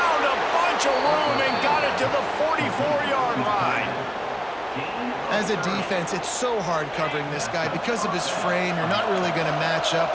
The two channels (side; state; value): both; identical; correlation 1.00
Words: a bunch of room and got it to the 44-yard line. As a defense, it's so hard covering this guy. Because of his frame, you're not really going to match